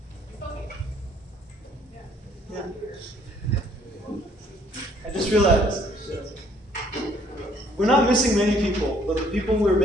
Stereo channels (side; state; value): both; normal; correlation 0.63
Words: Yeah. I just realized we're not missing many people, but the people we're